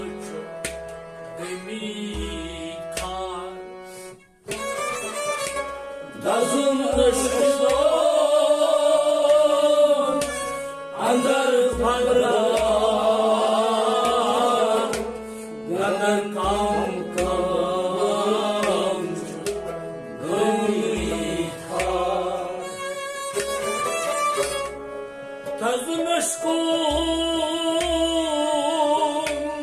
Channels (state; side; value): identical; both; correlation 1.00